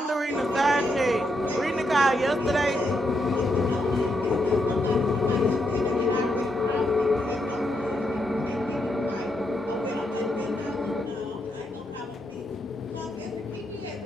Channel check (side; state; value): both; normal; correlation 0.80